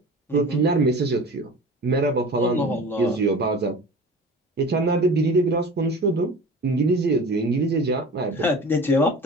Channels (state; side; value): normal; both; correlation 0.38